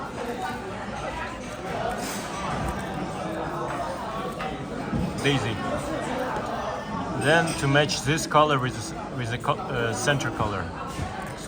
Daisy. Then to match this color with the center color.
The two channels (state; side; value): identical; both; correlation 1.00